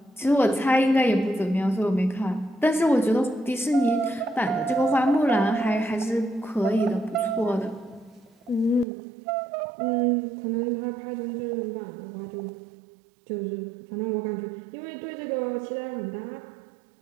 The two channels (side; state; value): left; drops out; at 8.8 s